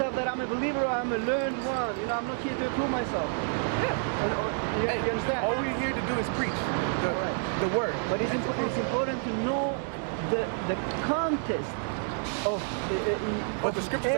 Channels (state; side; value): silent; left; 59 dB below the other